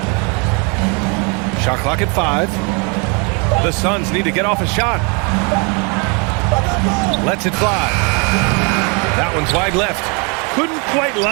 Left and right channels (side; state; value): left; quieter; 32.7 dB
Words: Shot clock at 5. The Suns need to get off a shot. Lets it fly. That one's wide left. Couldn't quite